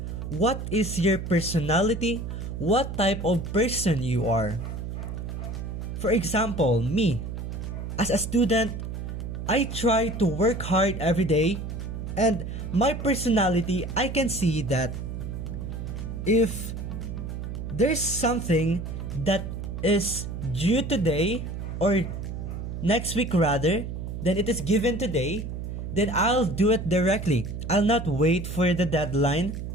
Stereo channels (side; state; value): right; noise; hum, 6 dB below the sound